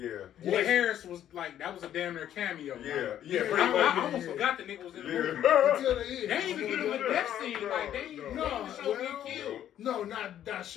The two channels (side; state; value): right; quieter; 11.0 dB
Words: Wood Harris was like, that was a damn near cameo. I almost forgot the nigga was in the movie. Until the end. They ain't even give him a death scene. Like, they ain't even show him killed. No, not